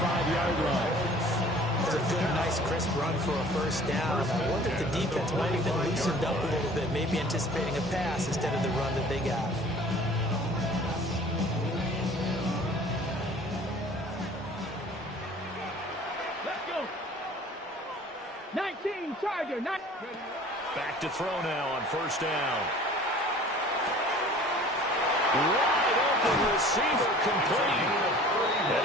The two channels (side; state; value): both; normal; correlation 0.48